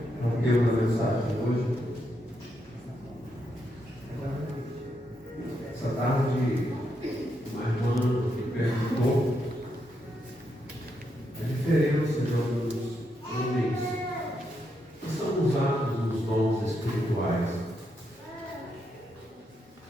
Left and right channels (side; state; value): both; normal; correlation 0.81